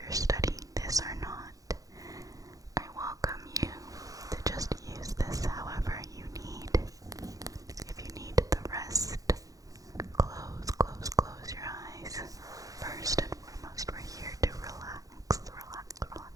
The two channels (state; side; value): late; left; 0.17 ms